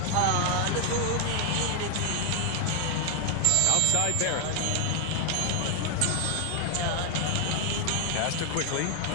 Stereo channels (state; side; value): different; both; correlation 0.00